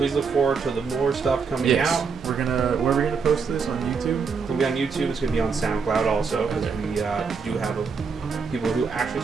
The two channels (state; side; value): quieter; left; 5.4 dB